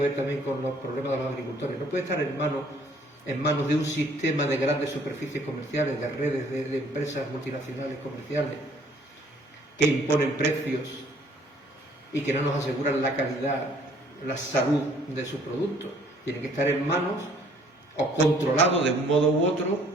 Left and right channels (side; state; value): both; normal; correlation 0.60